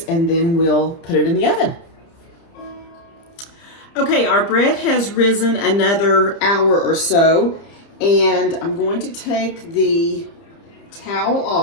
and then we'll put it in the oven. Okay, our bread has risen another hour or so, and I'm going to take the towel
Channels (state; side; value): late; right; 30 ms